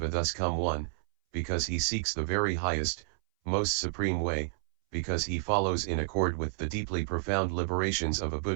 a thus come one, because he seeks the very highest, most supreme way, because he follows in accord with the deeply profound liberations of a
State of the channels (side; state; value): left; silent; 58 dB below the other